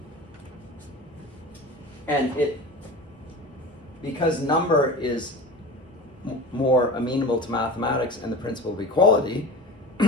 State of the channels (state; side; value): normal; both; correlation 0.33